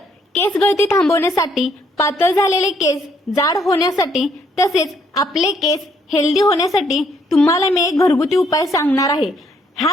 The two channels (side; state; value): both; normal; correlation 0.69